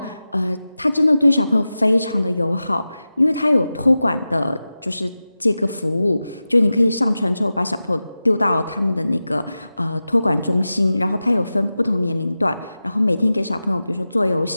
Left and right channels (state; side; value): inverted; both; correlation -0.94